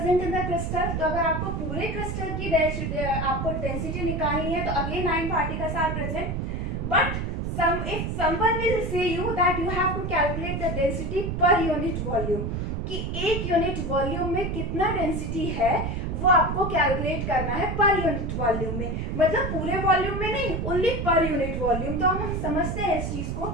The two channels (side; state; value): right; noise; rumble, 2 dB below the sound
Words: in the crystal. तो अगर आपको पूरे क्रिस्टल की आपको डेंसिटी निकालनी है तो again 9 particles are present. But if someone will say you that you have to calculate the density per unit volume, कि एक यूनिट वॉल्यूम में कितना डेंसिटी है वो आपको कैलकुलेट करना है पर यूनिट वॉल्यूम में. मतलब पूरे वॉल्यूम में नहीं, ओनली पर यूनिट वॉल्यूम. तो हम समझते हैं इस चीज को.